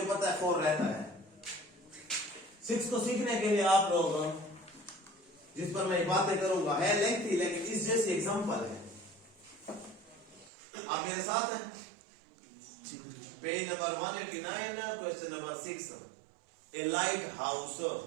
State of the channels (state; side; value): drops out; left; at 10.5 s